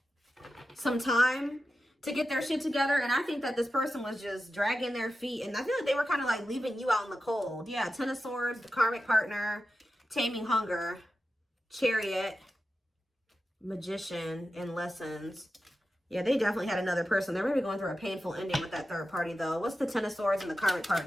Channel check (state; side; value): normal; both; correlation 0.92